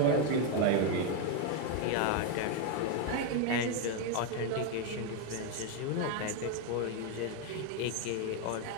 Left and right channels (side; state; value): both; different; correlation 0.01